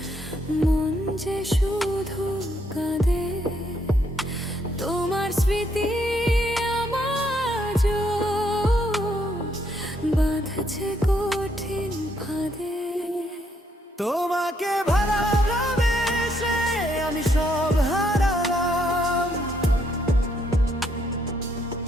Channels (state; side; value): normal; both; correlation 0.73